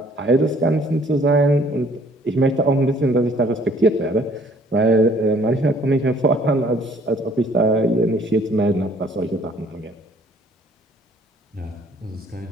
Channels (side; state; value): both; normal; correlation 0.59